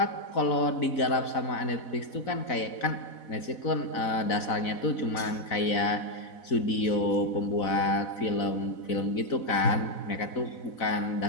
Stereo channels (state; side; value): late; right; 4.0 ms